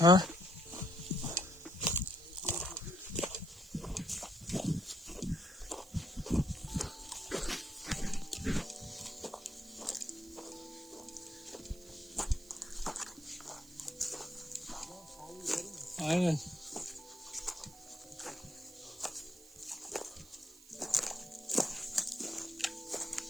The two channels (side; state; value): right; noise; hiss, 21 dB below the sound